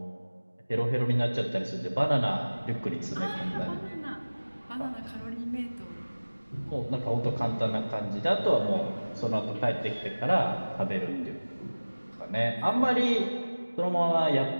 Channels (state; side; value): inverted; both; correlation -1.00